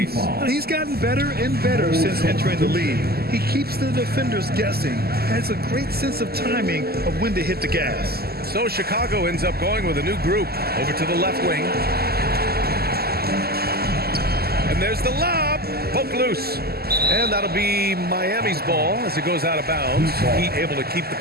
He's gotten better and better since entering the league. He keeps the defenders guessing. Has a great sense of timing of when to hit the gas. So Chicago ends up going with a new group over to the left wing. And there's the lob. Poke loose. And that'll be Miami's ball as it goes out of bounds. Heat able to keep the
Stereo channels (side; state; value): left; late; 0.46 ms